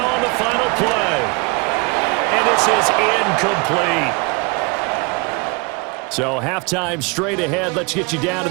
on the final play. And this is incomplete. So halftime straight ahead. Let's get you down to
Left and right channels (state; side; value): quieter; left; 29.5 dB